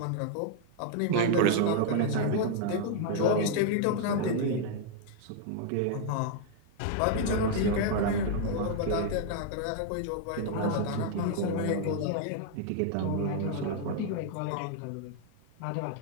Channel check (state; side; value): different; both; correlation 0.00